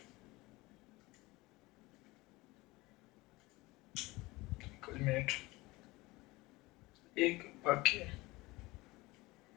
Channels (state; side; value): quieter; right; 21.5 dB